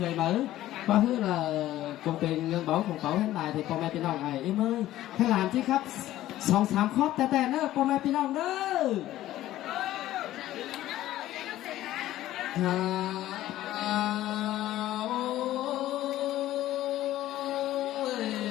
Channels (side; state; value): right; quieter; 14.4 dB